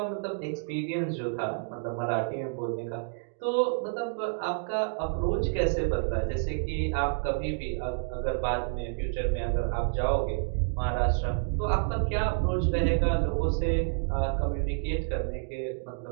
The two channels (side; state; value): left; silent; digital silence